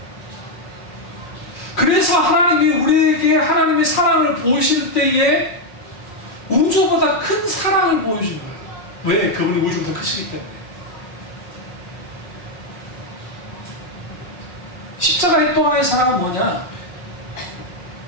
그래서 하나님이 우리에게 하나님의 사랑을 보이실 때에 우주보다 큰 사랑을 보여준 거예요. 왜? 그분이 우주보다 크시기 때문에. 십자가의 또 하나의 사랑은 뭐냐?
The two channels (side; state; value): right; late; 5.5 ms